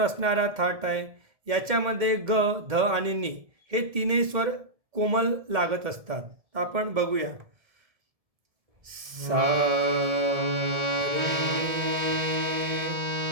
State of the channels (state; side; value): late; left; 1.7 ms